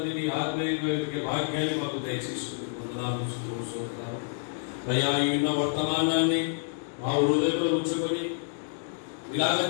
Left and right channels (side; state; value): right; silent; digital silence